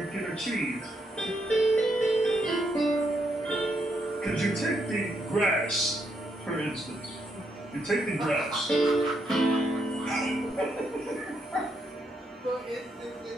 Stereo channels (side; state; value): both; normal; correlation 0.77